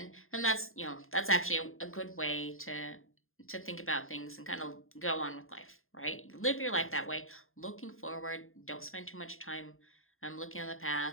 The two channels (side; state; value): right; late; 0.61 ms